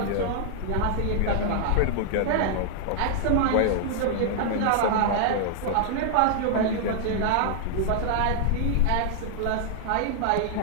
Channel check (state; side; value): different; both; correlation -0.01